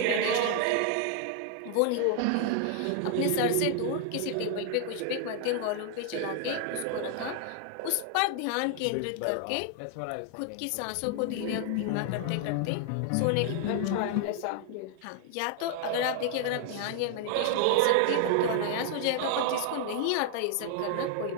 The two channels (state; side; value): different; both; correlation 0.00